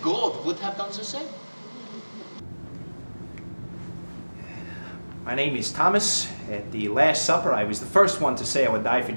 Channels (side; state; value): both; inverted; correlation -1.00